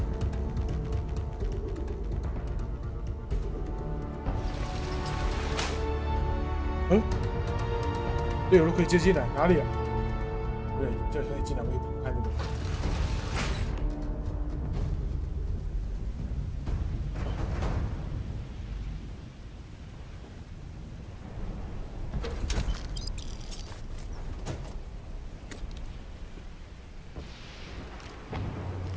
嗯，队友都可以接进来，哪里啊？对，这可以进来，我也看这个。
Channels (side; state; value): both; identical; correlation 1.00